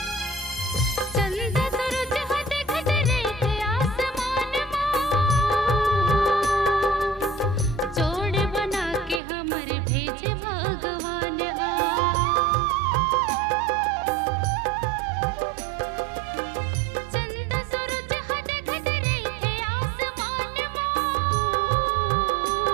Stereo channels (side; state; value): left; drops out; at 9.2 s